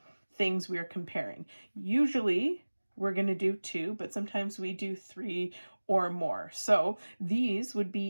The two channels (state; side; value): inverted; both; correlation -1.00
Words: things we are comparing. Usually we're going to do 2, but sometimes we do 3 or more. So these would